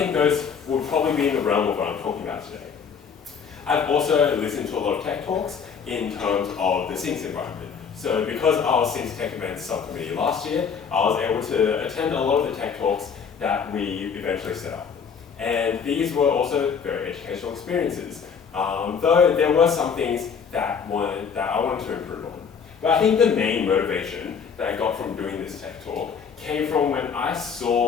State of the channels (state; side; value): quieter; right; 6.5 dB